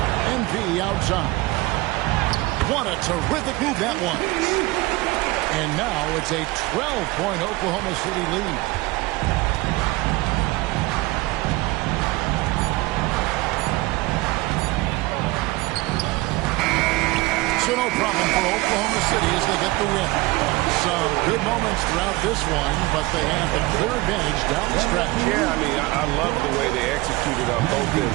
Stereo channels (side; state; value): left; quieter; 21.4 dB